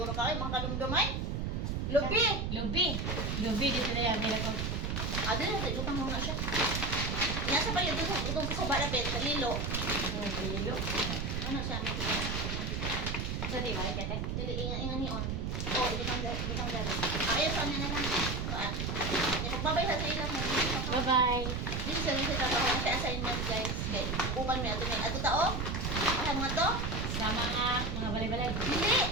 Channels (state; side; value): noise; right; rumble, 1 dB below the sound